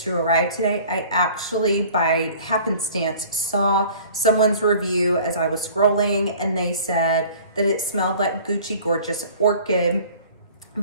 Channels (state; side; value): inverted; both; correlation -0.48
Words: to arrive today, I actually, by happenstance, saw someone's review as I was scrolling, and they said that it smelled like Gucci Gorgeous Orchid,